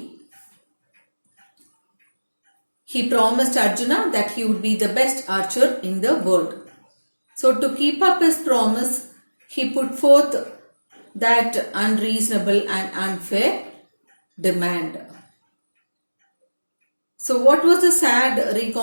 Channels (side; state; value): both; inverted; correlation -1.00